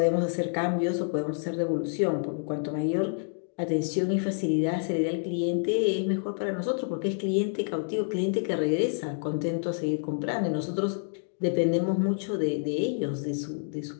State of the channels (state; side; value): silent; right; digital silence